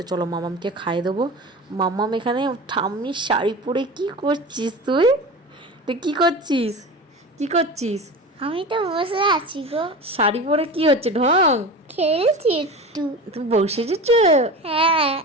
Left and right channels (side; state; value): both; normal; correlation 0.31